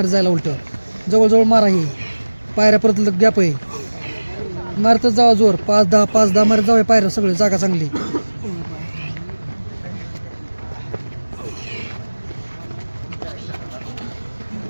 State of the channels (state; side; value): inverted; both; correlation -1.00